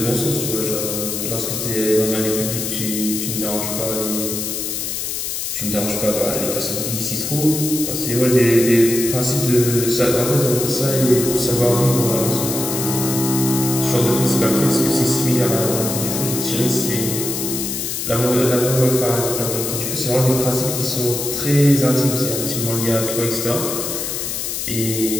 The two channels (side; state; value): left; noise; hiss, 3 dB below the sound